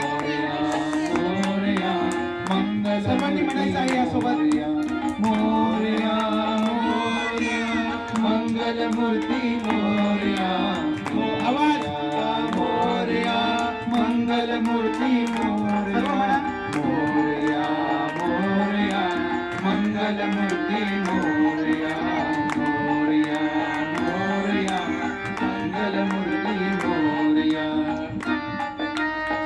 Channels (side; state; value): both; identical; correlation 1.00